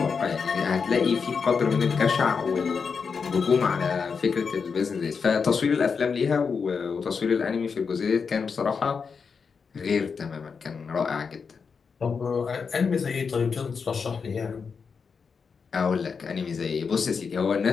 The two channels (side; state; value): right; quieter; 5.6 dB